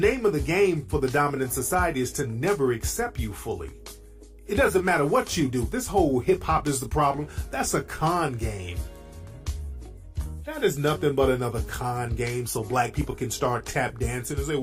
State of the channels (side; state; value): both; identical; correlation 1.00